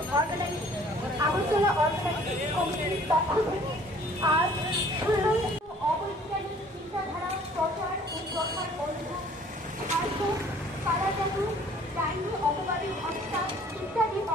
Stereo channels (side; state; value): both; normal; correlation 0.55